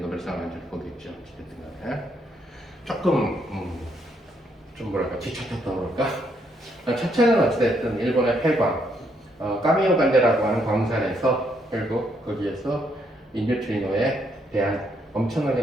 안 줄 거겠죠. 어쨌든 간에 조금 좀 뭐랄까 뒤쫓았다고 그럴까. 첫째는 어찌됐든 일본의 폐광 까미오 간데라고 하는 광산에서 결국 거기에서 인뉴트리노에 대한 엄청나게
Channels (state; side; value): normal; both; correlation 0.74